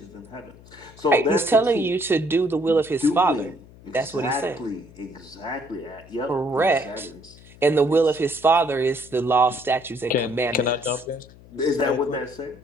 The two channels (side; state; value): left; noise; hum, 22 dB below the sound